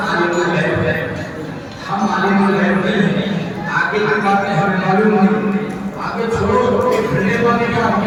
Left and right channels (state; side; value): identical; both; correlation 1.00